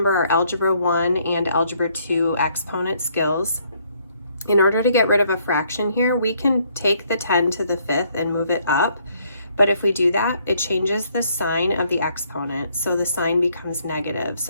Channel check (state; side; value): inverted; both; correlation -0.68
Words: our Algebra 1 and Algebra 2 exponent skills. In order to get rid of a fraction here, we can take the 10 to the 5th and move it up. But if we do that, it changes the sign of the exponent. So the sign becomes negative.